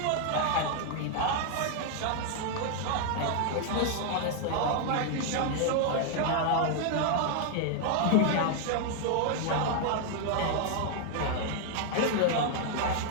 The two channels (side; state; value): both; different; correlation 0.00